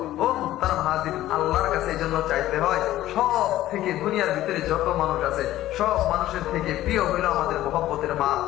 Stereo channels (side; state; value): right; quieter; 14.4 dB